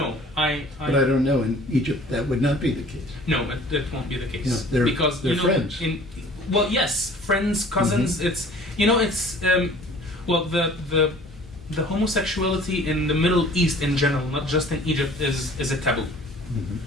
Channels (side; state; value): both; normal; correlation 0.49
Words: But I don't know. In Egypt, that would not be the case. No, it won't be the case. Yeah, they're- because they're friends. Well, yes, friends, cousins. It's well, the homosexuality in the Middle East in general, not just in Egypt, is a taboo.